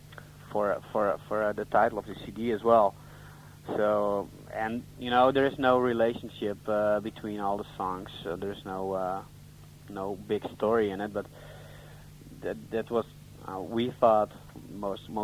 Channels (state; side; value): identical; both; correlation 1.00